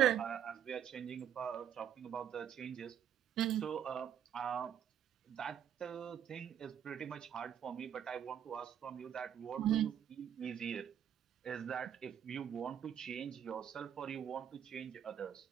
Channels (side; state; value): left; quieter; 9.4 dB